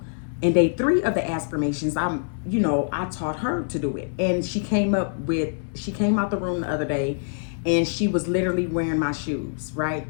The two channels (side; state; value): right; silent; digital silence